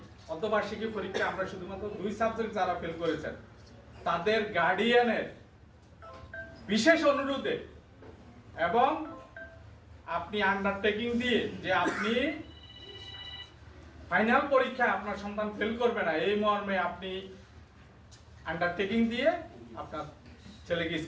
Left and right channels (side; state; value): both; identical; correlation 1.00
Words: অর্ধবার্ষিকী পরীক্ষা আমরা শুধুমাত্র 2 সাবজেক্ট যারা ফেল করেছেন তাদের গার্ডিয়ানের বিশেষ অনুরোধে এবং আপনি আন্ডারটেকিং দিয়ে যে আপনি ফাইনাল পরীক্ষায় আপনার সন্তান ফেল করবে না, এই মর্মে আপনি আন্ডারটেকিং দিয়ে আপনার ছেলেকে